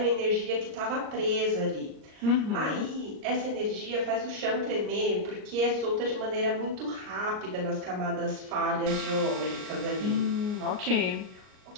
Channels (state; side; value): late; left; 38 ms